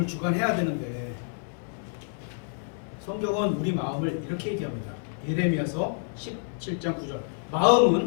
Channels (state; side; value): silent; right; 59 dB below the other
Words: 주관해야 되는데 성경은 우리 마음을 이렇게 얘기합니다. 예레미야서 17장 9절.